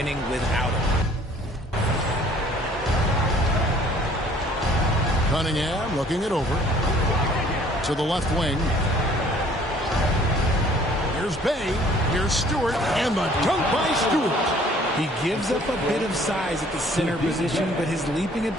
without him. Cunningham looking it over. To the left wing. Here's Bay. Here's Stewart. And the dunk by Stewart. He gives up a bit of size at the center position, but his leaping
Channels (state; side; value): normal; both; correlation 0.56